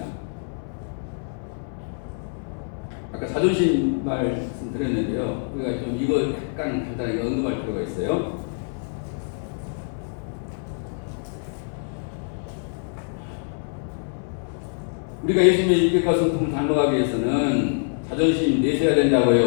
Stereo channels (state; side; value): silent; right; 60 dB below the other